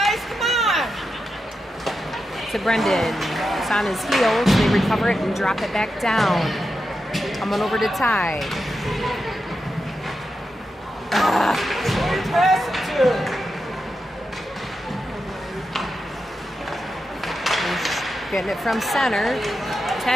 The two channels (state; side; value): normal; both; correlation 0.88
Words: Come on. To Brendan. It's on his heels. They recover it and drop it back down. Coming over to Ty. Pass it to. getting it from center.